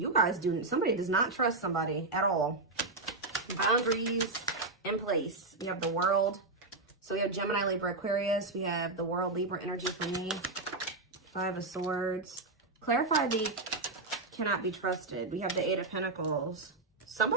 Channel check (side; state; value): left; quieter; 3.3 dB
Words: guys somebody does not trust somebody at all. Boundaries in place. We have the World. So we have Gemini, Libra, Aquarius. We have the World, Libra energy for me. Five of Swords. Clarify the cannot be trusted. We have the Eight of Pentacles.